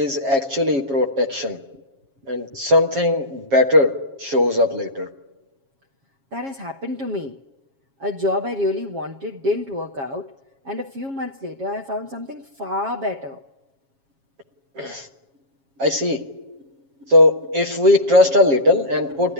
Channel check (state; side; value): late; left; 7.3 ms